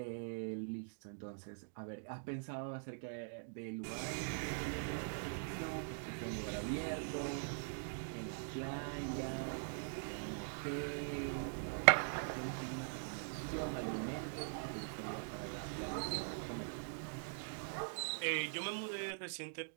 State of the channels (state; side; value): silent; left; digital silence